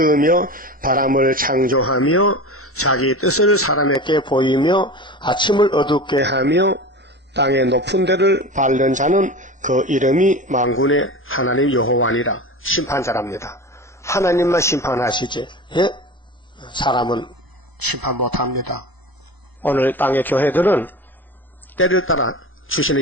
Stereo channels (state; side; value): normal; both; correlation 0.31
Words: 바람을 창조하며 자기 뜻을 사람에게 보이며 아침을 어둡게 하며 땅의 높은 데를 밟는 자는 그 이름이 만군의 하나님 여호와니라. 심판자랍니다. 하나님만 심판하시지, 예? 사람은 심판 못합니다. 오늘 땅의 교회들은 때를 따라